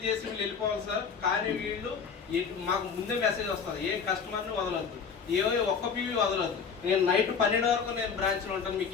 చేసి వీళ్ళు వెళ్ళిపోవాలి సార్. కానీ వీళ్ళు మాకు ముందే మెసేజ్ వస్తుంది, ఏ కస్టమర్ని వదలొద్దు, ఒక్క పీవీ వదలొద్దు. నేను నైట్ 12 వరకు నేను బ్రాంచ్లో ఉంటాను, మీకు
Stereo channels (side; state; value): right; quieter; 6.2 dB